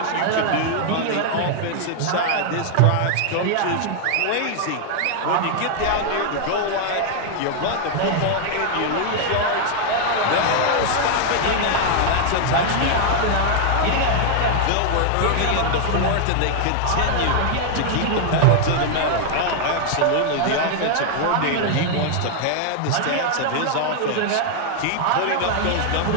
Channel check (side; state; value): both; different; correlation 0.00